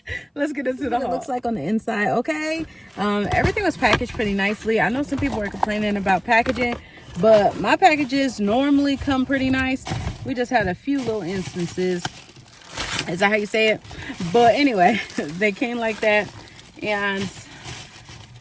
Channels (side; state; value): both; identical; correlation 1.00